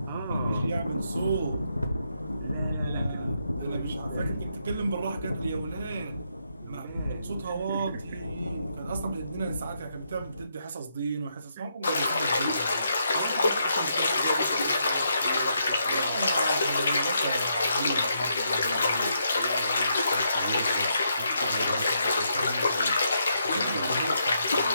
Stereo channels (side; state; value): both; inverted; correlation -0.78